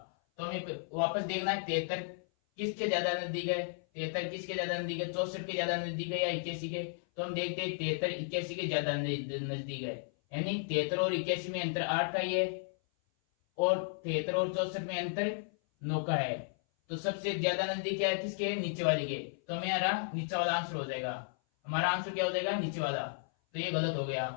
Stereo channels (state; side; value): silent; right; 55 dB below the other